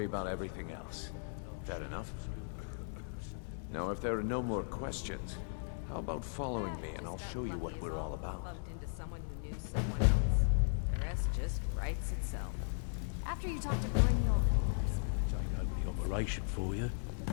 about everything else. Fair enough? Now, if there are no more questions, how about following me and I'll show you what we're all about. Bumped into someone who knew someone else. The rest just writes itself. After you talk to Brynjolf and Mercer, come back and see. Operation for you.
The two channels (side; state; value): right; silent; digital silence